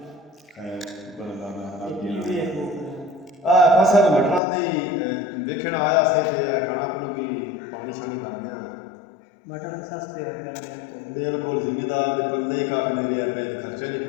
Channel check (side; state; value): right; drops out; at 4.4 s